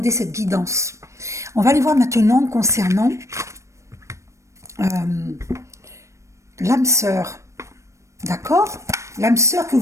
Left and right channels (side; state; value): left; late; 0.15 ms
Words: cette guidance. On va aller voir maintenant concernant l'âme sœur. D'accord? L'âme sœur que